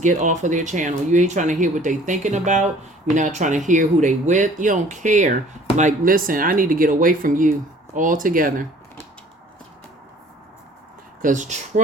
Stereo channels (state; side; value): normal; both; correlation 0.52